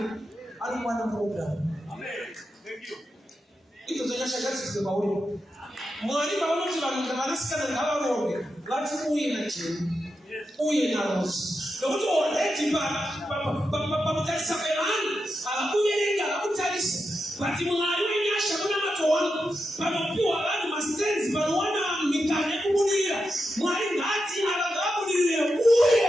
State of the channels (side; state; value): both; normal; correlation 0.87